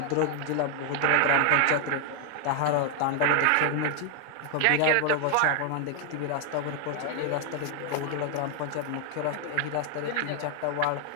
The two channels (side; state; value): both; different; correlation 0.00